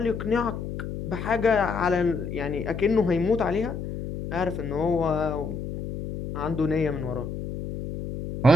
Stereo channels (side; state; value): left; noise; hum, 7 dB below the sound